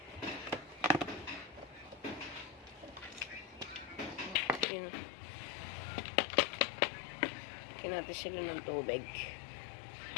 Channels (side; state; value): right; drops out; at 4.7 s